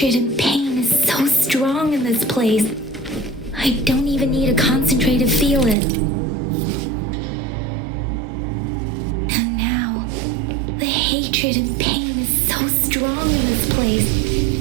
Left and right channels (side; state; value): left; drops out; at 5.8 s